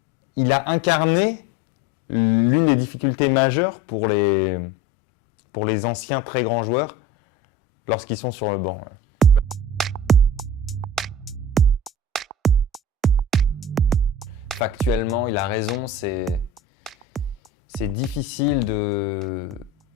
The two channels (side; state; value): both; normal; correlation 0.36